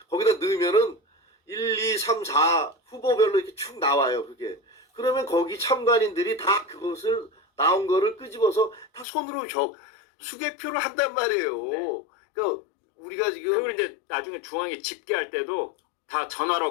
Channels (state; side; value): drops out; right; at 9.1 s